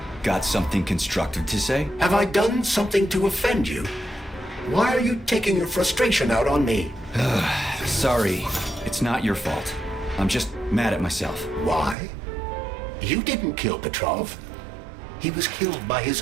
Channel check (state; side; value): drops out; left; at 12.0 s